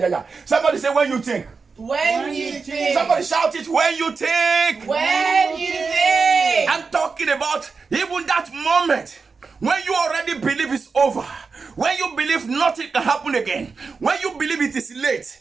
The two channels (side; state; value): left; quieter; 4.8 dB